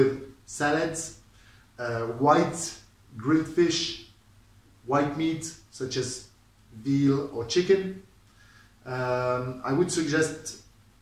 salads, white grilled fish, white meat such as veal or chicken. I would suggest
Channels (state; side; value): identical; both; correlation 1.00